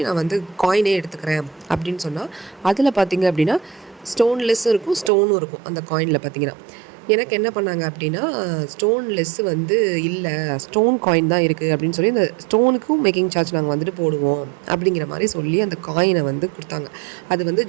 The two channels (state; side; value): drops out; left; at 5.1 s